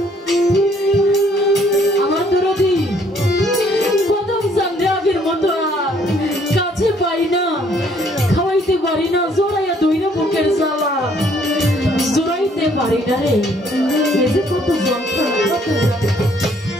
আমার দরদি কদম চান্দে আগের মতো আর কাছে পাই না, খাওয়াইতে পারি না, জোড়াইয়া দইরা বুকের জ্বালা জোড়াইতে পারি না রে। এই যে কত যন্ত্রণা, কত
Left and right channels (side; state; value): both; normal; correlation 0.64